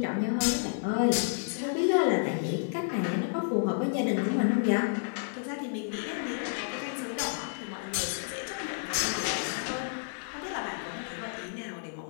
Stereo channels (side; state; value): right; silent; 57 dB below the other